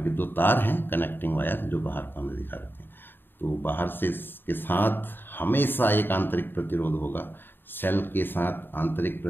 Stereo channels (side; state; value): right; late; 0.097 ms